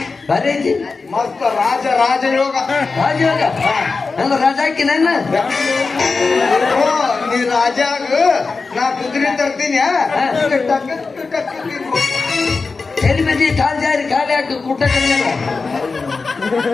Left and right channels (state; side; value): quieter; right; 4.3 dB